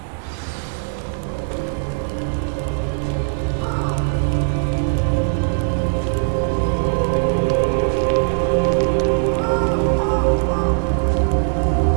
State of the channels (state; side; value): silent; left; digital silence